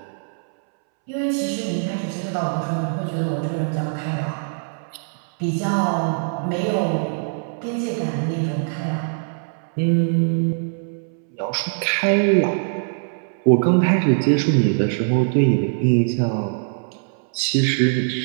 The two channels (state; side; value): silent; left; 64 dB below the other